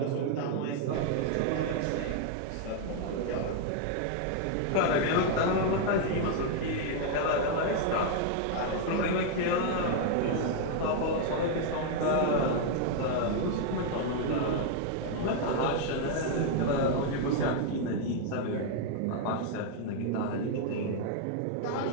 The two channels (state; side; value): different; both; correlation 0.00